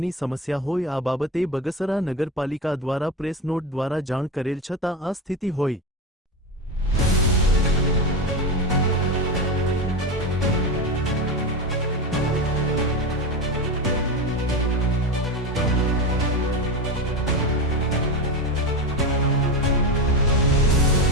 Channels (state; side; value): normal; both; correlation 0.19